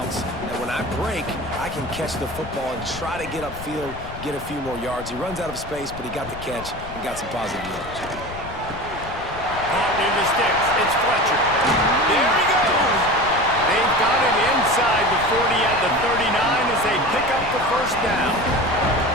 that when I break, I can catch the football and try to get upfield, get a few more yards. He runs out of space, but he got the catch and got some positive yards. Caught near the sticks. It's Fletcher. There he goes. They've got it inside the 40 at the 39 as they pick up the first down.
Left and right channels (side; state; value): left; noise; rumble, 13 dB below the sound